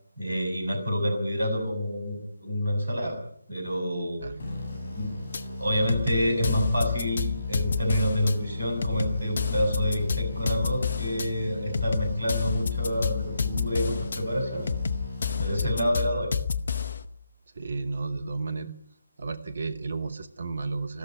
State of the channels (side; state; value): both; inverted; correlation -0.82